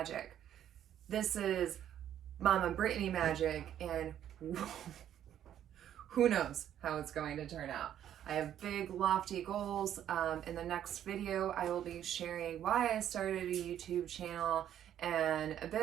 This is Mama Brittany magic, and who knows how it's going to turn out. I have big lofty goals. In the next video, I will be sharing why I started a YouTube channel and a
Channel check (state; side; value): quieter; left; 10.6 dB